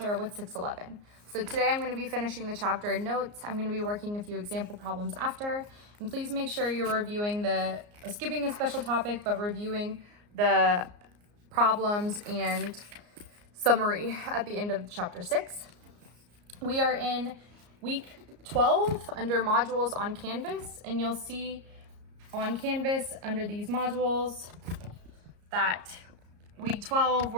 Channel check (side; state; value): left; late; 34 ms